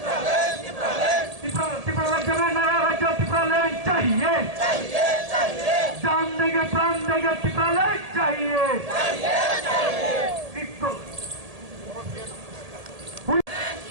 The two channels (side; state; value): left; late; 1.8 ms